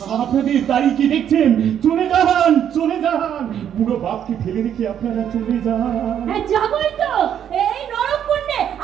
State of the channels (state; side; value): quieter; left; 9.5 dB